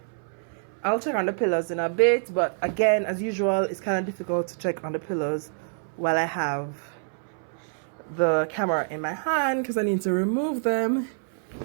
I'll check on the pillows in a bit, but again, as usual, it's kind of difficult to check on the pillows while I have the camera in my hand because I need to remove them.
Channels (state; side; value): silent; left; 60 dB below the other